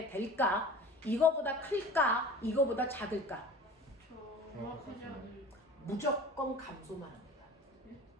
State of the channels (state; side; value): normal; both; correlation 0.40